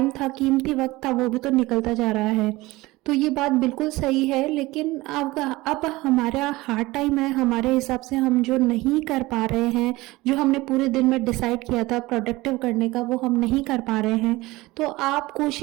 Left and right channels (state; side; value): quieter; left; 20.2 dB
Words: था, कीमती वक्त था, वो भी तो निकलता जा रहा है। तो ये बात बिल्कुल सही है, लेकिन अब हमारा हार्ड टाइम है, हमारे हिसाब से हम जो नहीं कर पा रहे हैं, जो हमने पूरे दिन में डिसाइड किया था प्रोडक्टिव करने का, वो हम नहीं कर पा रहे हैं। तो आप